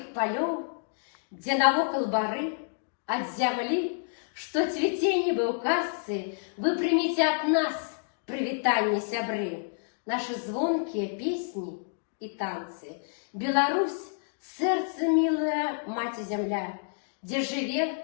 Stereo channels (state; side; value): silent; right; digital silence